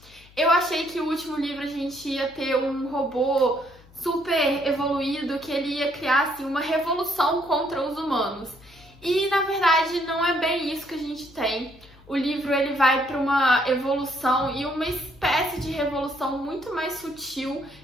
eu achei que o último livro a gente ia ter um robô super evoluído, que ele ia criar assim, uma revolução contra os humanos. E na verdade não é bem isso que a gente tem. O livro ele vai para uma evolução e uma espécie de revolução muito mais sutil.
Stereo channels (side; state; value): left; noise; hum, 25 dB below the sound